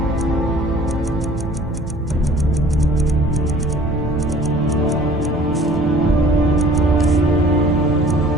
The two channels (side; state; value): both; normal; correlation 0.51